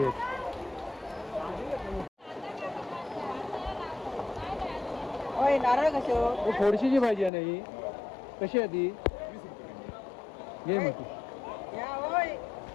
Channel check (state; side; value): drops out; right; at 7.3 s